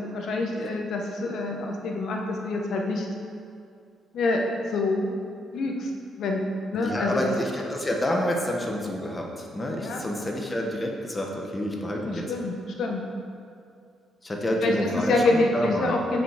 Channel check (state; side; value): normal; both; correlation 0.77